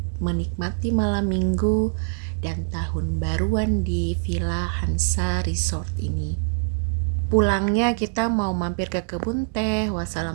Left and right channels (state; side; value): silent; left; 63 dB below the other